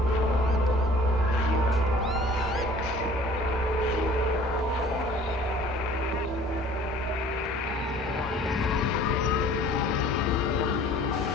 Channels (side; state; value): both; normal; correlation 0.50